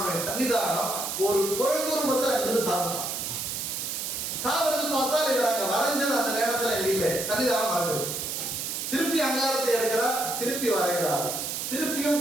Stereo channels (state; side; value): noise; right; hiss, 3 dB below the sound